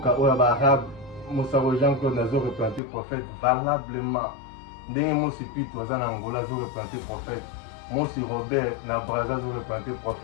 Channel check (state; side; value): drops out; right; at 2.8 s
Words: oya ba arabe Mosaro Jean-Claude nazo représenter prophète valablement ndenge mosi pitu toza na Angola zo représenter prophète mosi Robert na Brazza zo représenter